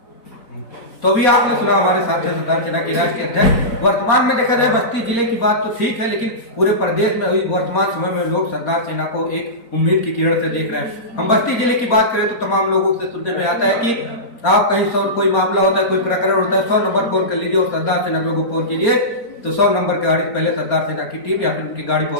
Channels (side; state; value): right; late; 4.3 ms